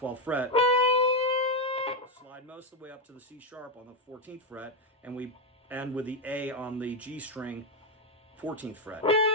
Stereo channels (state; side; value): normal; both; correlation 0.04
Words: fret, slide most of the way up to the C sharp on the 14th fret, and we end with the A on the G string, 14th fret.